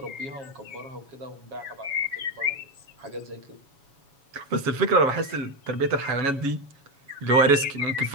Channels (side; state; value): left; late; 7.1 ms